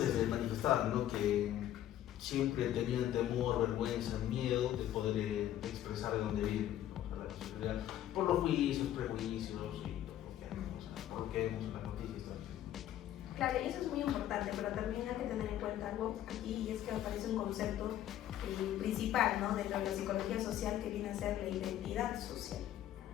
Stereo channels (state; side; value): quieter; right; 12.1 dB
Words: manifestaban, ¿no? Que siempre tenían temor, vergüenza, miedo de poder expresar de dónde viven, ¿no? La nacionalidad, por los juicios, prejuicios y por lo que vemos en las noticias también. Claro, y eso es muy importante, pero también hay que tener en cuenta algo aquí, y es que aparece un concepto principal, ¿no? Dentro de la psicología social, que viene a ser la identidad social.